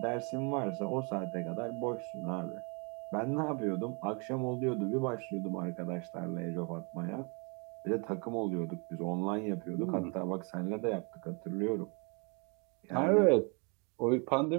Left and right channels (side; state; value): left; quieter; 33.8 dB